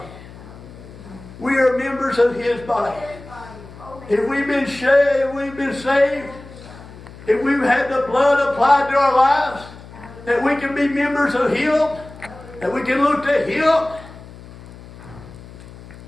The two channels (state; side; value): noise; left; hum, 18 dB below the sound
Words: We are members of His body. If we've been saved, if we've had the blood applied to our lives, that we can be members of Him, that we can look to Him.